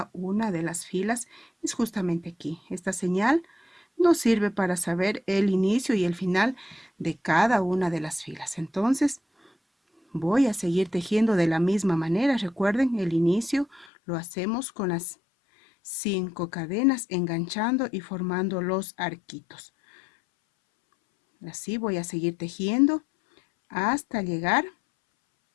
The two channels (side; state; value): right; drops out; at 13.9 s